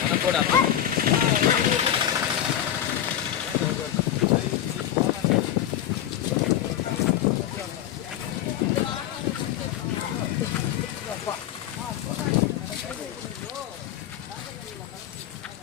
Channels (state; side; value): quieter; right; 11.2 dB